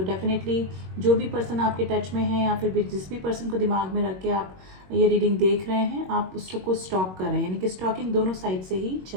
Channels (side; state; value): left; late; 21 ms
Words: डेफिनेटली जो भी पर्सन आपके टच में है, या फिर जिस भी पर्सन को दिमाग में रख के आप ये रीडिंग देख रहे हैं, आप उसको स्टॉक कर रहे हैं, यानी कि स्टॉकिंग दोनों साइड से ही